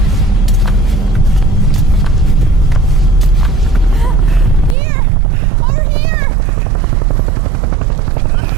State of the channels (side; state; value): left; drops out; at 4.8 s